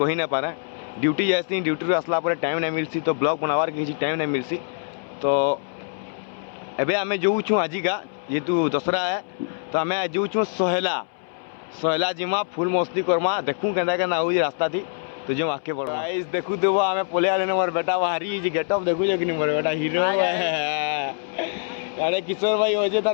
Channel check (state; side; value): silent; right; 62 dB below the other